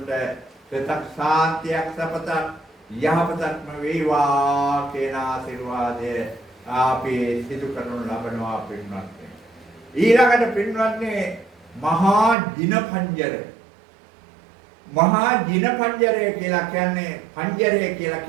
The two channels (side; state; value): left; drops out; at 12.4 s